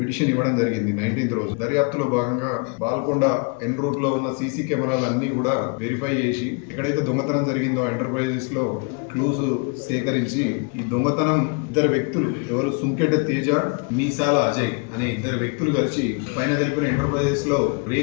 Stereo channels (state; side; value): quieter; right; 32.9 dB